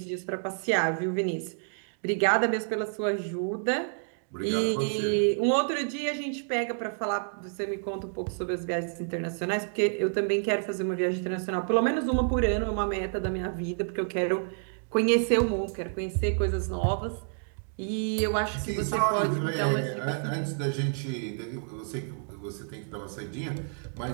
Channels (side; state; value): left; silent; digital silence